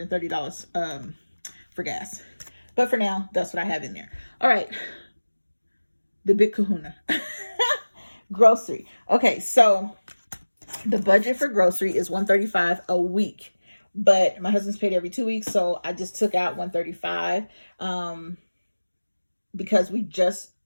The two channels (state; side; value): inverted; both; correlation -1.00